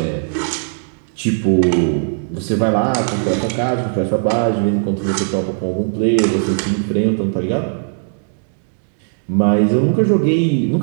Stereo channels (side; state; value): left; silent; digital silence